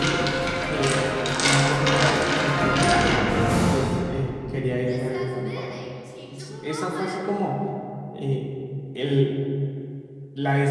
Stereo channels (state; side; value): identical; both; correlation 1.00